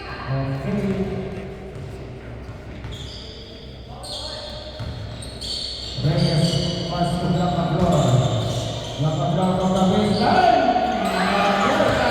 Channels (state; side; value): identical; both; correlation 1.00